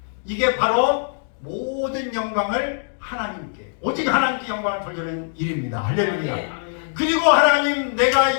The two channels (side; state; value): right; silent; digital silence